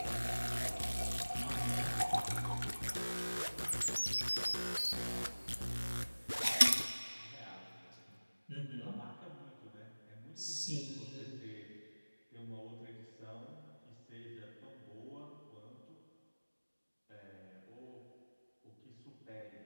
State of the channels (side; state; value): both; inverted; correlation -1.00